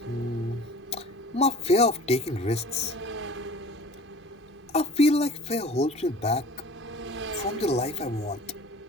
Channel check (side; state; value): both; normal; correlation 0.44